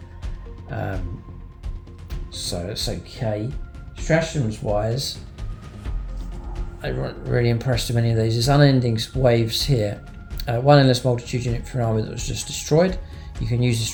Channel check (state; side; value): identical; both; correlation 1.00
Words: So it's okay. Stratagems wise, I wasn't really impressed with any of these. There's Unending Waves here. One endless multitude unit for an army that was just destroyed. You can use the